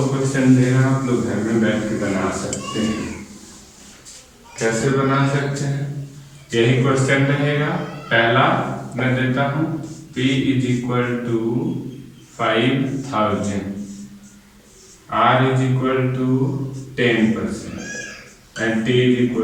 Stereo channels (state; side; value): identical; both; correlation 1.00